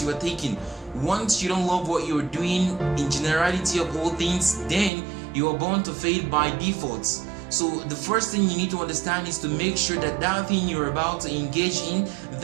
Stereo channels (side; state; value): left; drops out; at 4.9 s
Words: you are taking, once you don't love what you're doing in generality of all things, then you are bound to fail by default. So the first thing you need to understand is to make sure that that thing you're about to engage in,